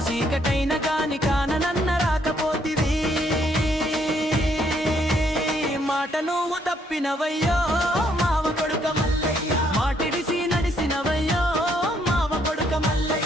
చీకటైన గాని కాననన్న రాకపోతివి. మాట నువ్వు తప్పినవయ్యో మావ కొడుక మల్లయ్య, మాటిడిసి నడిసినవయ్యో మావ కొడుక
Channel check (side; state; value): both; normal; correlation 0.70